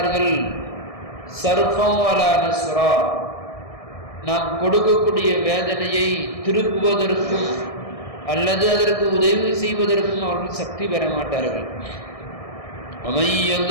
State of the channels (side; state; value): right; late; 1.6 ms